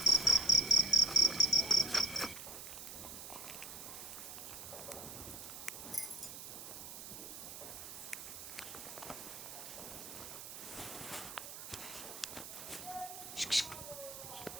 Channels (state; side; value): noise; right; hiss, 10 dB below the sound